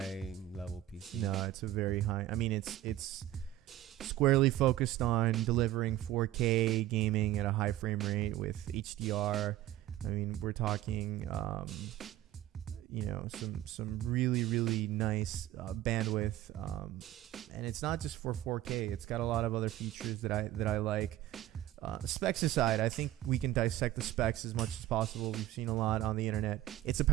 level PC. No, it's a very high. I mean, it's squarely focused on delivering 4K gaming at a high frame rate with HDR. I mean, we're talking, some really, really nice bandwidth, and it's not just for 4K. It's got a lot of other features that I like. Specs aside, I think we can dissect the specs as much as possible. We've seen a lot on the internet. It's a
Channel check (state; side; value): quieter; left; 14.3 dB